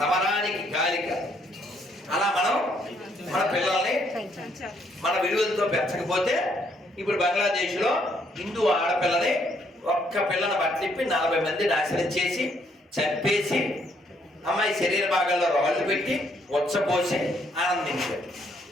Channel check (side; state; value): both; normal; correlation 0.70